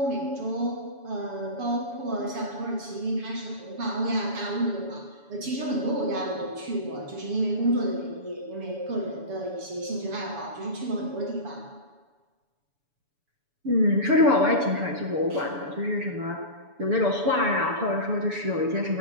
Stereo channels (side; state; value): left; late; 7.0 ms